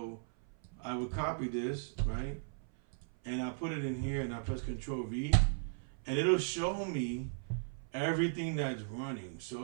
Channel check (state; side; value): silent; left; 53 dB below the other